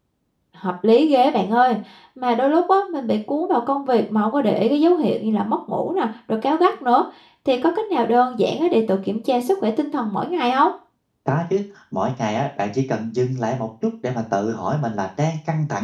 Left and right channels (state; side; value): identical; both; correlation 1.00